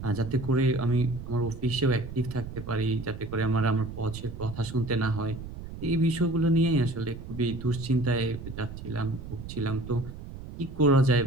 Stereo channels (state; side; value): noise; right; rumble, 11 dB below the sound